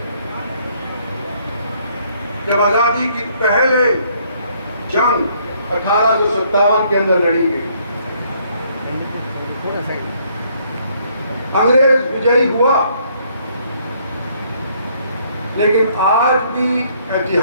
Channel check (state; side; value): inverted; both; correlation -0.66